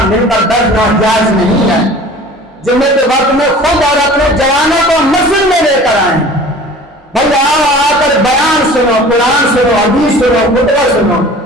مل کر درد ناجائز نہیں ہے. جمعے کے وقت میں خود اور اپنے جوانوں کو مسجد میں لے کر آئیں، بھائی آ کر بیان سنو، قرآن سنو، حدیث سنو، خطبہ سنو.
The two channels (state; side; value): normal; both; correlation 0.44